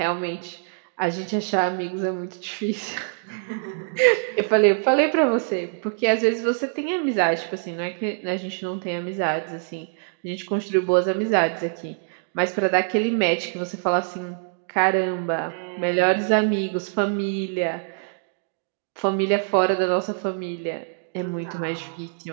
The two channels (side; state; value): left; silent; digital silence